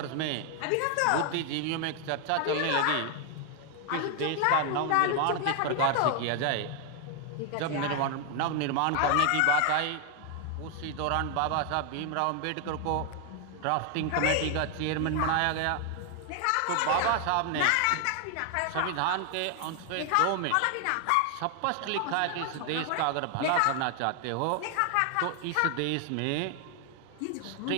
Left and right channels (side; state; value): both; different; correlation 0.00